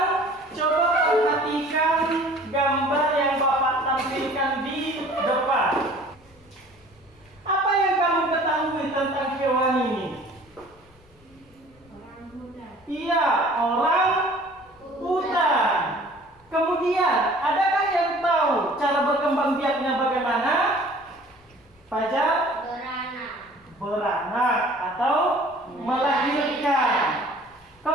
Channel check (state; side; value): noise; left; rumble, 30 dB below the sound